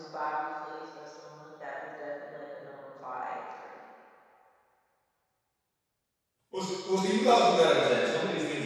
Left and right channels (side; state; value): both; identical; correlation 1.00